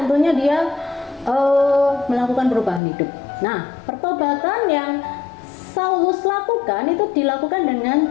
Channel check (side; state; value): right; drops out; at 2.8 s